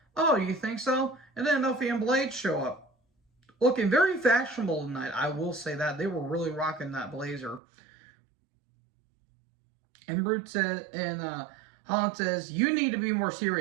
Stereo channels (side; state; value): left; drops out; at 7.6 s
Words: Oh, you think so? And then Nofi and Blade show up. Looking very fashionable tonight, I will say that. They were really rocking that blazer. And Brute says, and Holland says, you need to be more